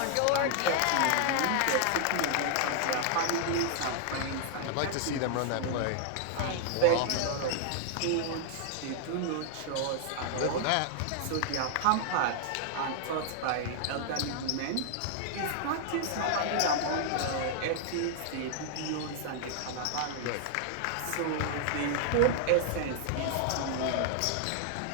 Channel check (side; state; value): both; different; correlation -0.01